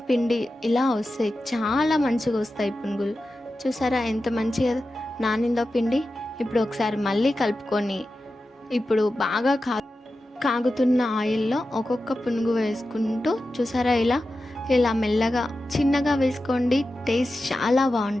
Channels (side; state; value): both; normal; correlation 0.92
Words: పిండి ఇలా వస్తాయి, చాలా మంచిగా వస్తాయి పునుగులు. చూసారా ఎంత మంచిగా నానిందో పిండి. ఇప్పుడు ఒకసారి మళ్ళీ కలుపుకొని ఇప్పుడు బాగా కాగుతున్న ఆయిల్లో ఒక్కొక్క పునుగు వేసుకుంటూ, చూసారా ఇలా మెల్లగా చిన్నగా వేసుకోండి, టేస్ట్ చాలా